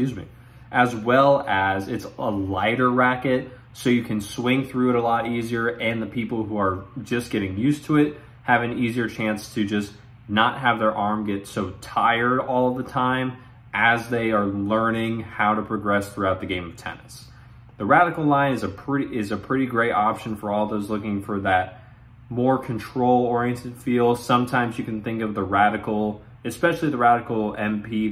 me, as well as it's a lighter racket, so you can swing through it a lot easier, and the people who are just getting used to it have an easier chance to just not have their arm get so tired all the time as they are learning how to progress throughout the game of tennis. The radical line is a pretty great option for all those looking for that more control-oriented feel. Sometimes you can think of the Radical, especially the Radical MP,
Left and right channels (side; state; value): both; identical; correlation 1.00